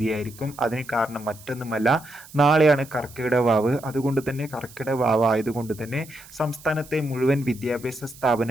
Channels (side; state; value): right; noise; hiss, 20 dB below the sound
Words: അതിന് കാരണം മറ്റൊന്നുമല്ല, നാളെയാണ് കർക്കിടക വാവ്. അതുകൊണ്ട് തന്നെ കർക്കിടക വാവ് ആയതുകൊണ്ട് തന്നെ സംസ്ഥാനത്തെ മുഴുവൻ വിദ്യാഭ്യാസ